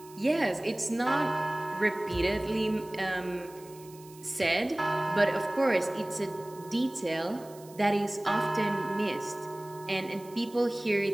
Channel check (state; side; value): noise; right; hiss, 22 dB below the sound